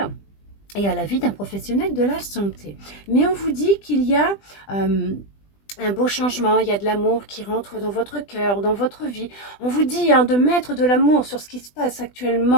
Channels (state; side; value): late; right; 20 ms